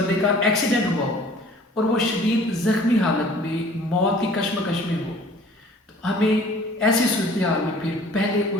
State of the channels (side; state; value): both; normal; correlation 0.50